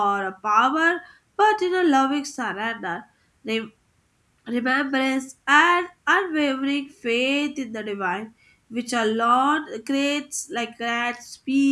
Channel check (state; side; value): identical; both; correlation 1.00